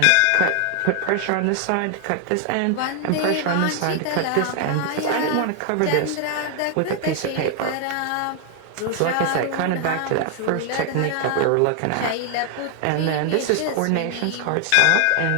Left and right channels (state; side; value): different; both; correlation 0.00